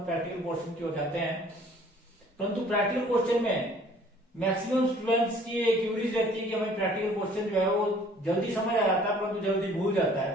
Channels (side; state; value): both; normal; correlation 0.55